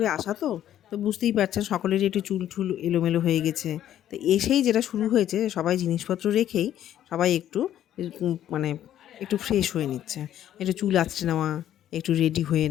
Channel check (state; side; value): quieter; right; 11.5 dB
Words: আসা তো বুঝতেই পারছেন সকলেরই একটু চুল-ঠুল এলোমেলো হয়ে গেছে। তো এসেই যেটা শুরু হয়েছে, সবাই জিনিসপত্র রেখেই সবাই একটু মানে একটু ফ্রেশ হয়ে নিচ্ছে। একটু চুল আঁচড়ে নেওয়া, একটু রেডি হয়ে